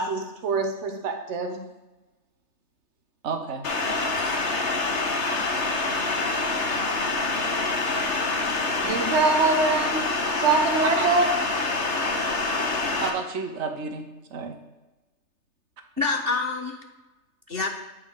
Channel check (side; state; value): left; late; 3.3 ms